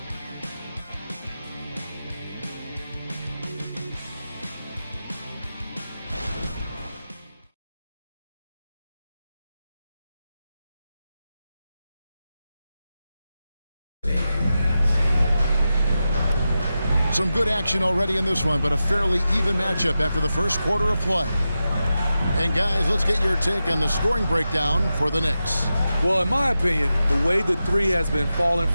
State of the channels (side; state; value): both; inverted; correlation -0.91